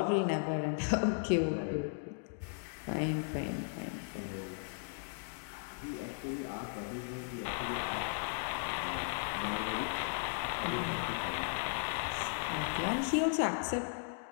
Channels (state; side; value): silent; right; digital silence